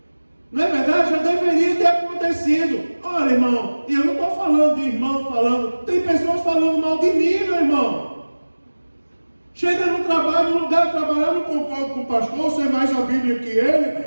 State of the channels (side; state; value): both; inverted; correlation -1.00